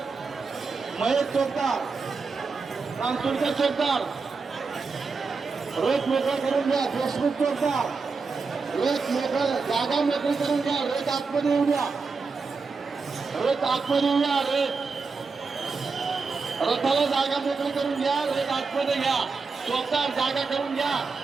महेश, चौकदार रामसुरकर, चौकदार रथ मोकळा करून घ्या. देशमुख चौकदार रथ मोकळा, जागा मोकळी करून घ्या. रथ आतमध्ये येऊ द्या, रथ आतमध्ये येऊ द्या. रथाला जागा मोकळी करून घ्या, रथ आतमध्ये घ्या. चौकदार जागा करून घ्या,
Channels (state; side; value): quieter; left; 4.6 dB